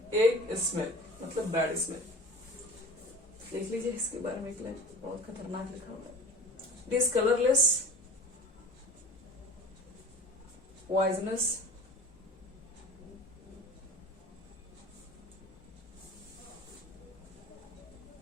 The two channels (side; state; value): both; normal; correlation 0.40